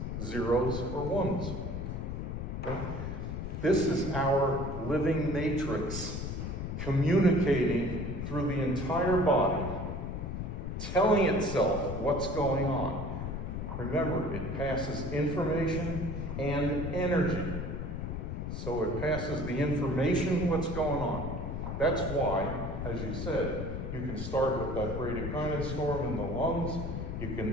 zeros or ones. Okay? This is our living matrix communicating through the entire body, telling itself what's going on. Remember, it passes information and energy. So it passes the information, what's going on. That's why, as you said, you can start with that bradykinin storm in the lungs. You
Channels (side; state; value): left; noise; rumble, 4 dB below the sound